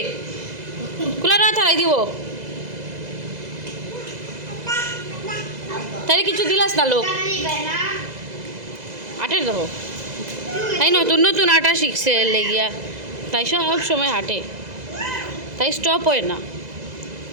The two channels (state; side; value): late; left; 2.0 ms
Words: কুলারও আথারাই দিব তাইরে কিছু দিলাস না লোক আটের দেখো তাই নতুন নতুন আটা শিখছে লেগিয়া তাই সব সময় হাঁটে তাই স্টপ হয় না